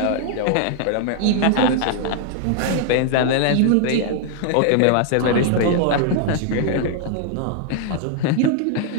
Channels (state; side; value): different; both; correlation 0.00